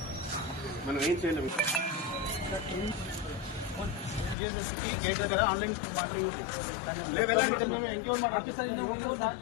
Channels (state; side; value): drops out; right; at 4.4 s